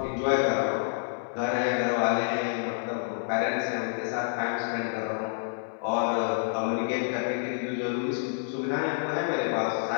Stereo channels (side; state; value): right; silent; 59 dB below the other